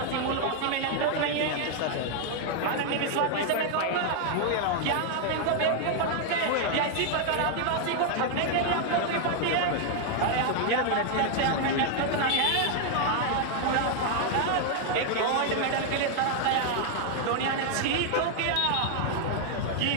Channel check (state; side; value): different; both; correlation 0.00